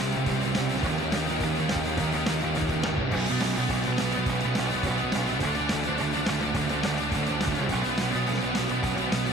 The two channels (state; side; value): normal; both; correlation 0.58